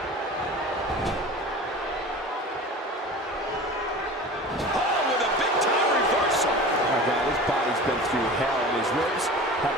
Been through hell, and his ribs have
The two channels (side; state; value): both; normal; correlation 0.36